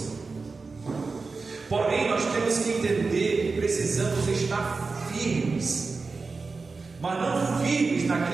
Porém, nós temos que entender que precisamos estar firmes, mas não firmes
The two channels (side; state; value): left; quieter; 4.2 dB